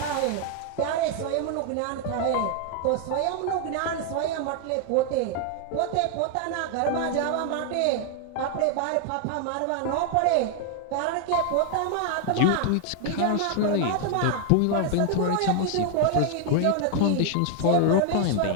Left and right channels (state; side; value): different; both; correlation 0.00